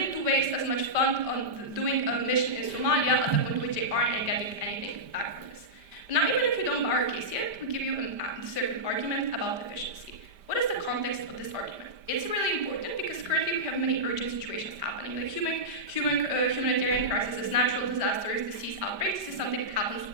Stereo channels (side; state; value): left; late; 5.1 ms